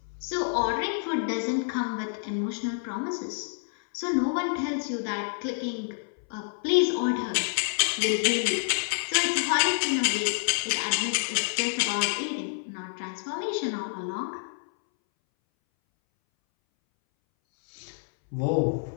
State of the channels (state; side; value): silent; right; 59 dB below the other